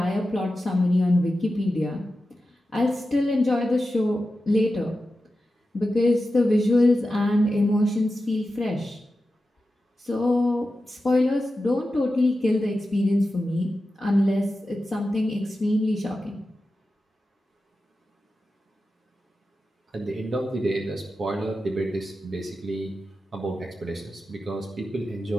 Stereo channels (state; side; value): normal; both; correlation 0.92